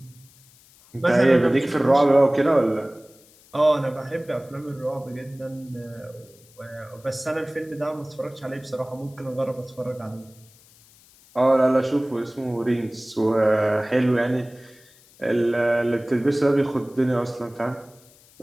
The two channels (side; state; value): left; noise; hiss, 27 dB below the sound